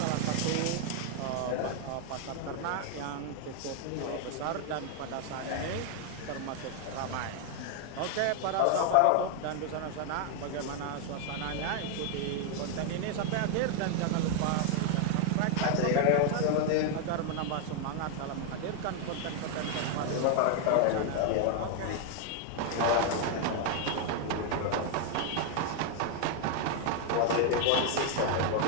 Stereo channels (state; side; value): different; both; correlation 0.00